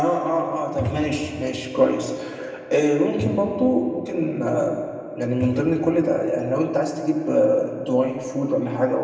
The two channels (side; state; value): both; identical; correlation 1.00